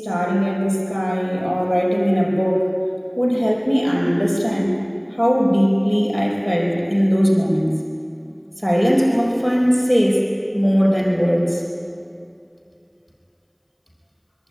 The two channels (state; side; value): identical; both; correlation 1.00